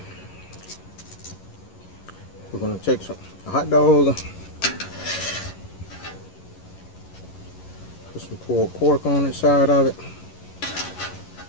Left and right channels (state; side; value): late; right; 11 ms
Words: We're gonna take a hot dog, Some pulled pork on the side of it.